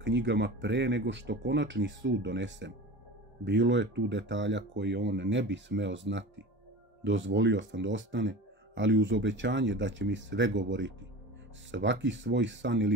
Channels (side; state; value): both; normal; correlation 0.34